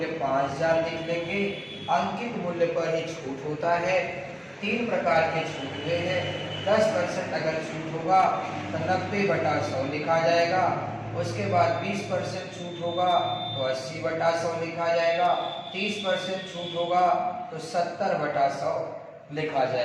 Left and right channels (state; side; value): identical; both; correlation 1.00